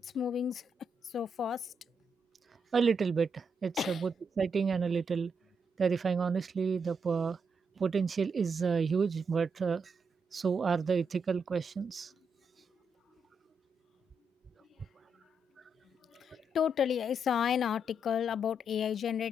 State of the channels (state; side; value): normal; both; correlation 0.80